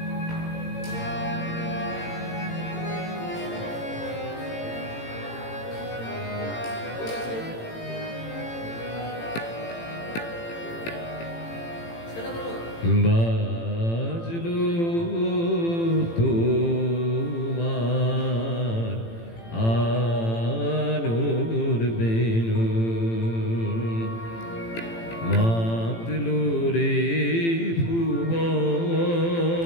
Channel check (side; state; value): right; late; 18 ms